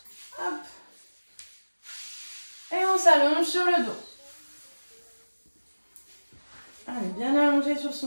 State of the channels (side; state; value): both; inverted; correlation -1.00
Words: Hop. Et on s'allonge sur le dos. Allez, bien allongé sur